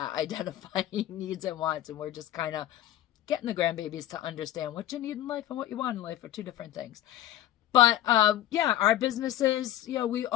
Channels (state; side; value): quieter; right; 13.1 dB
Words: identifying needs and wants. And we're just kind of getting the grandbabies to understand what you need in life and what you want in life are 2 different things. But yeah, our businesses, we